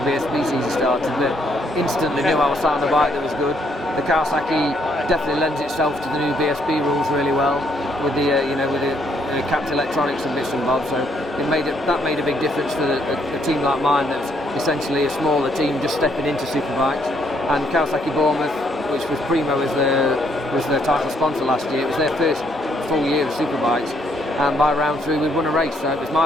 BSB season started, but instantly knew I was sat on a bike that was good. The Kawasaki definitely lends itself to the new BSB rules really well, with the capped electronics and bits and bobs. So that made a big difference for a team like mine, that's essentially a smaller team just stepping into superbikes. And Kawasaki Bournemouth, which was Primo as their title sponsor last year, it was their first full year of superbikes, and by round 3 we'd won a race. So it was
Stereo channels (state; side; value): normal; both; correlation 0.71